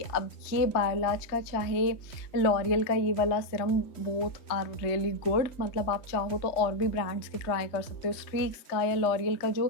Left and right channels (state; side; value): late; right; 3.2 ms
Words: अब ये बायोलाज का चाहे लॉरियल का ये वाला serum, both are really good. मतलब आप चाहो तो और भी ब्रांड्स के ट्राई कर सकते हो। स्ट्रीक्स का या लॉरियल का जो